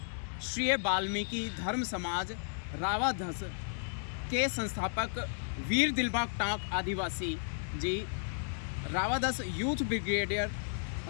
वाल्मीकि धर्म समाज रावाधस के संस्थापक वीर दिलबाग टांक आदिवासी जी, रावाधस यूथ ब्रिगेडियर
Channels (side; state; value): right; silent; digital silence